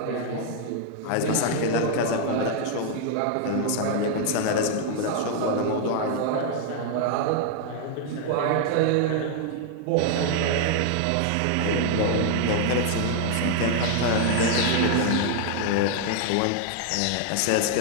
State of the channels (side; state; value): both; different; correlation 0.00